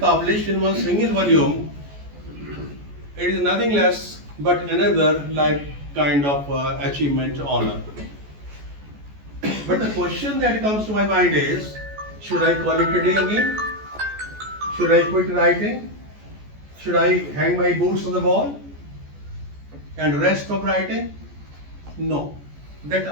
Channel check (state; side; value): late; left; 14 ms